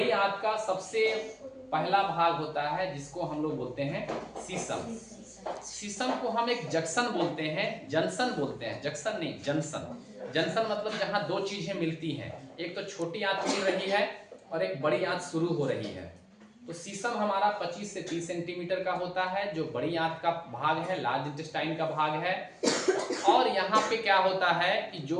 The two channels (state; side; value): identical; both; correlation 1.00